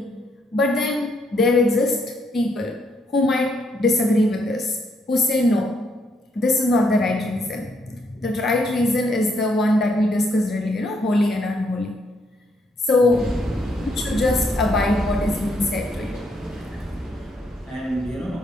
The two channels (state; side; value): normal; both; correlation 0.74